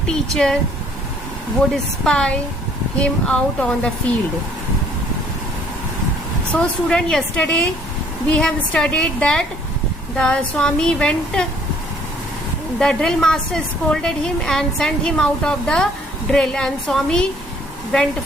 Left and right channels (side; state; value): both; normal; correlation 0.60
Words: teacher would spy him out on the field. So student, yesterday we have studied that the Swami went, the drill master scolded him and sent him out of the drill, and Swami went